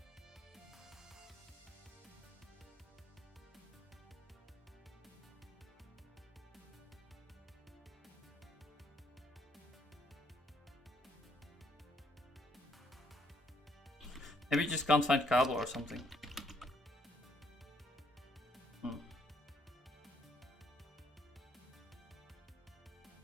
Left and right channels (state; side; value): normal; both; correlation 0.69